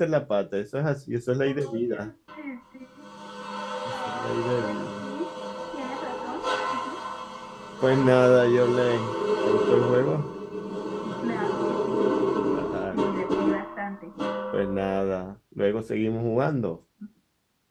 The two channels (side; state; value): both; identical; correlation 1.00